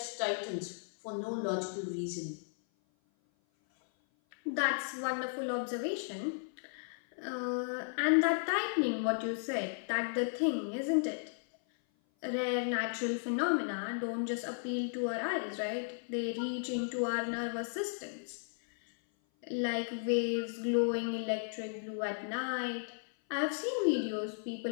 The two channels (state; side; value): silent; right; 55 dB below the other